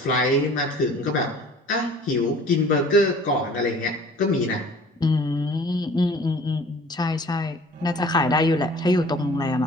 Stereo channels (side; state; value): both; normal; correlation 0.49